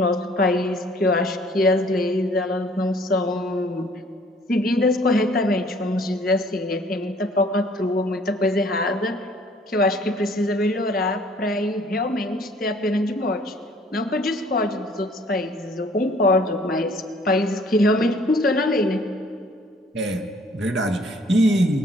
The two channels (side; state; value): both; normal; correlation 0.57